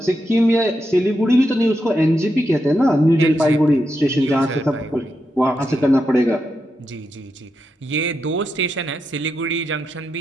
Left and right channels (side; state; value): both; normal; correlation 0.85